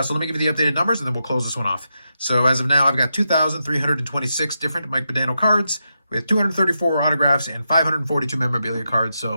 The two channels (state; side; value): inverted; both; correlation -0.86